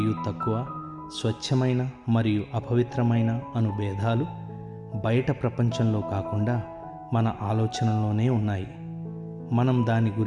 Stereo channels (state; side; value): identical; both; correlation 1.00